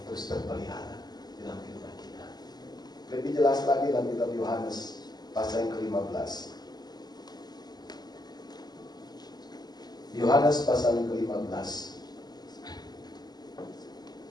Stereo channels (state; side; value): late; right; 0.20 ms